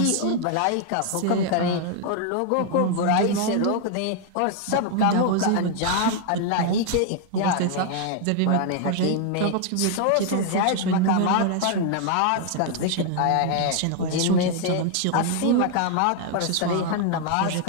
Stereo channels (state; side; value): different; both; correlation 0.00